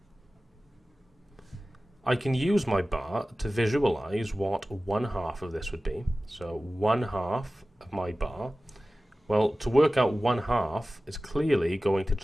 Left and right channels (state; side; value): normal; both; correlation 0.96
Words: I can use my bar to visualize what 1/2 of this would be. So 1/2 of my bar, well, to work out 1/2 is clearly going to